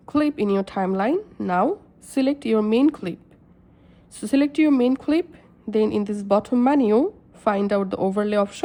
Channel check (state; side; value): identical; both; correlation 1.00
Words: clip in your timeline, now select your main clip. So select your main clip, then in this bottom menu find out the overlay